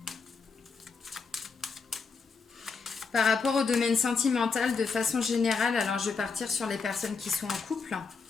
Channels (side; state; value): right; quieter; 5.0 dB